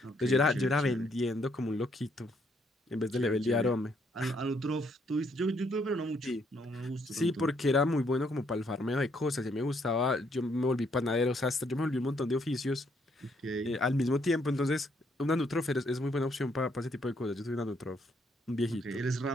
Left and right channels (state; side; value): normal; both; correlation 0.71